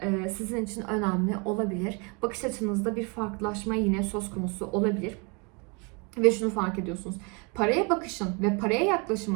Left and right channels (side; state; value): left; quieter; 32.0 dB